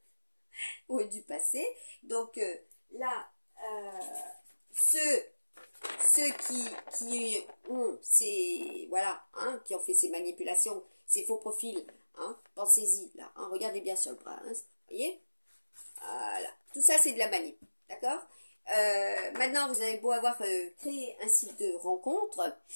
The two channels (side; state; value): both; inverted; correlation -1.00